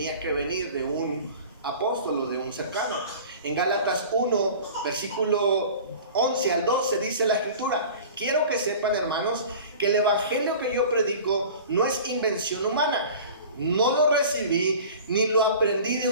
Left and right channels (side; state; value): both; inverted; correlation -0.40